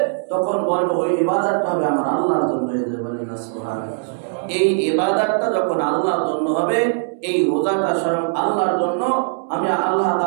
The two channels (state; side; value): silent; left; digital silence